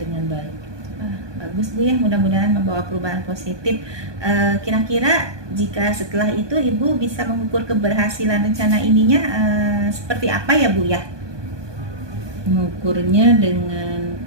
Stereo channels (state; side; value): late; left; 1.2 ms